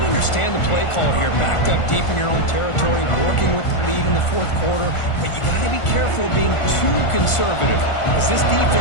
understand the play call here, backed up deep in your own territory, working with the lead in the 4th quarter, but you got to be careful of being too conservative. Because this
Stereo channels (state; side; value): late; right; 1.4 ms